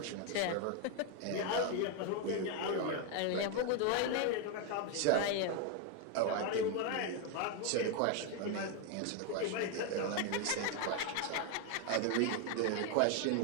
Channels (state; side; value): different; both; correlation 0.01